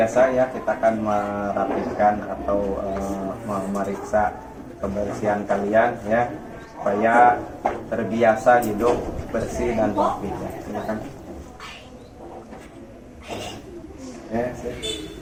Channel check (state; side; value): identical; both; correlation 1.00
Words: ya, kita akan merapikan atau memeriksa kebersihan kalian ya, supaya terbiasa hidup bersih dan rapi ya. Silakan. Ya,